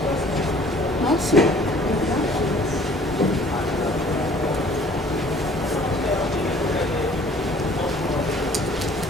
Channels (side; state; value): both; normal; correlation 0.54